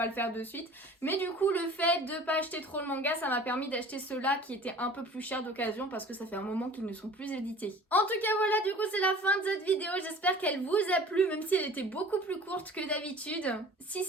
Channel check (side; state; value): both; normal; correlation 0.45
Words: le faire de suite. Mais du coup, le fait de pas acheter trop le manga, ça m'a permis d'acheter ceux-là qui étaient un peu plus chers d'occasion parce que ça fait un moment qu'ils ne sont plus édités. En tout cas, voilà, du coup, c'est la fin de cette vidéo. J'espère qu'elle vous a plu, même si elle était beaucoup plus courte que d'habitude. Si